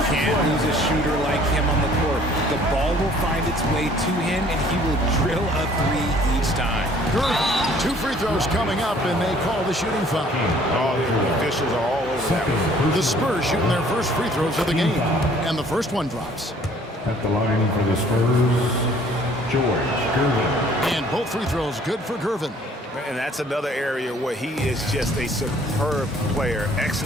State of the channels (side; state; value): both; normal; correlation 0.57